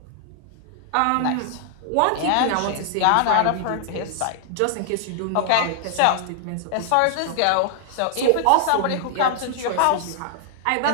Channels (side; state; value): both; different; correlation 0.00